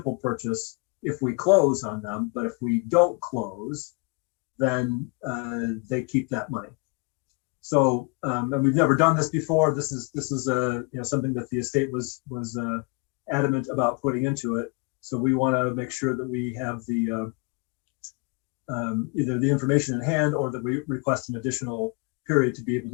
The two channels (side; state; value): right; quieter; 32.0 dB